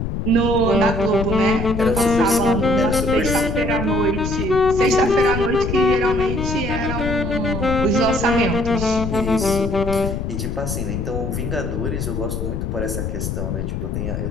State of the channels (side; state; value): left; noise; rumble, 3 dB below the sound